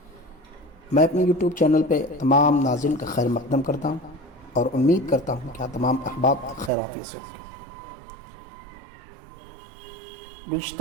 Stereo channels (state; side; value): drops out; left; at 6.7 s